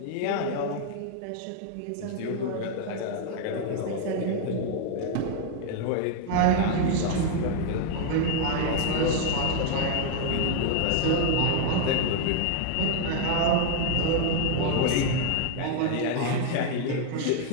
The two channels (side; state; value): both; different; correlation 0.00